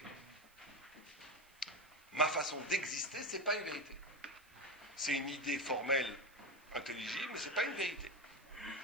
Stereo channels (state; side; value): noise; right; hiss, 27 dB below the sound